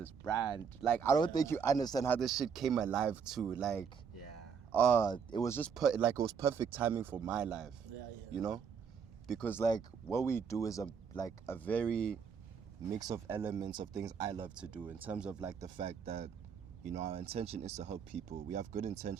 brand. Like I don't think you understand how this shit came alive too. Like, Yeah. it was just it was perfect timing for my life. Yeah. You know, because like what we do is a very mix of elements of things I love to do, in terms of like the fact that, you know, our intention is to help people. We have good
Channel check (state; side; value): quieter; left; 6.6 dB